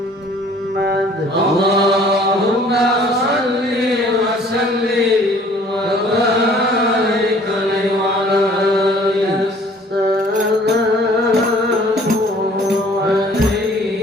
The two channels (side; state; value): both; normal; correlation 0.54